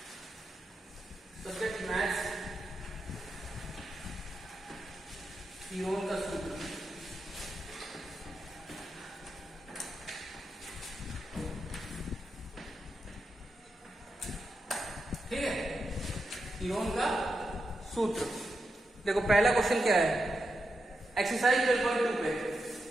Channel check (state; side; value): normal; both; correlation 0.87